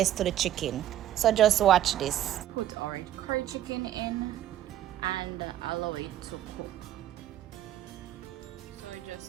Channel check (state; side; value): quieter; left; 12.0 dB